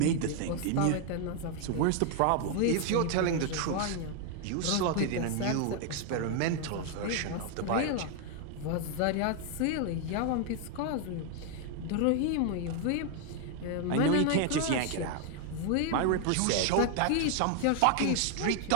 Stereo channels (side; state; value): both; different; correlation 0.00